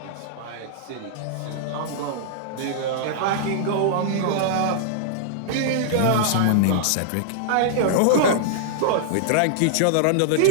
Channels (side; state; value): both; different; correlation -0.02